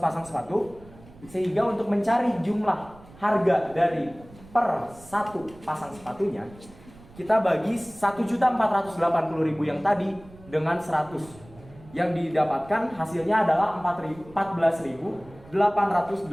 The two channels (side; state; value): right; noise; rumble, 22 dB below the sound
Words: Sehingga untuk mencari jumlah harga dari per 1 pasang sepatunya kita bagi 1.480.000 yang tadi dengan 100. Yang didapatkan hasilnya adalah